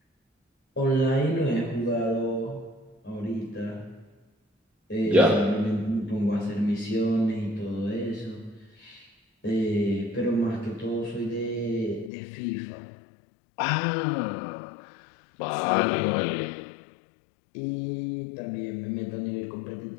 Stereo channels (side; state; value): right; drops out; at 12.1 s